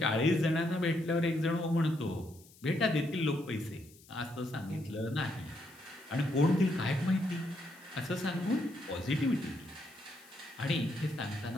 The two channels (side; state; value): left; noise; hiss, 24 dB below the sound